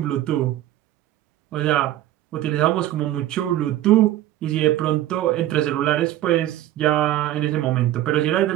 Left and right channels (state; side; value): quieter; left; 13.8 dB